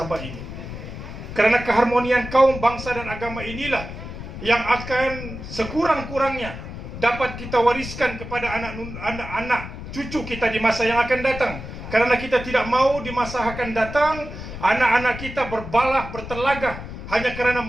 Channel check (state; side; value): noise; left; rumble, 10 dB below the sound